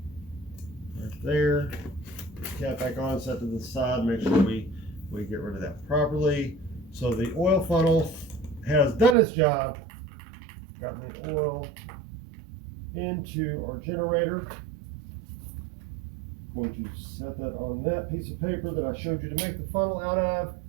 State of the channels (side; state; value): left; drops out; at 9.2 s